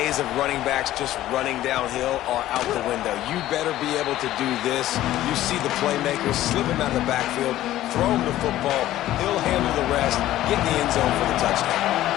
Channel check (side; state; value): right; quieter; 14.2 dB